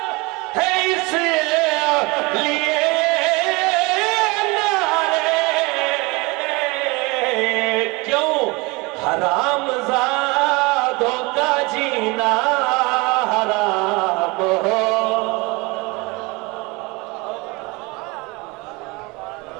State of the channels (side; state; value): left; quieter; 25.9 dB